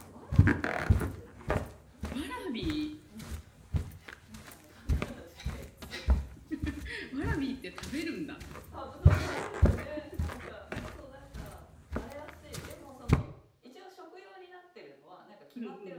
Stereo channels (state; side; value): identical; both; correlation 1.00